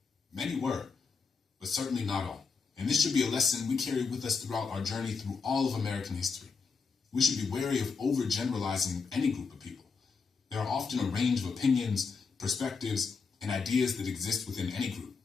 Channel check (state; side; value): quieter; right; 5.0 dB